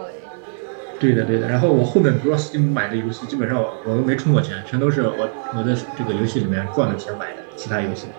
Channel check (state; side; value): silent; left; digital silence